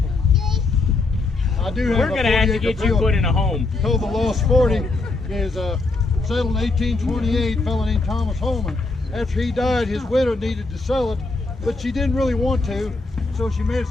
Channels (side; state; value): right; quieter; 3.5 dB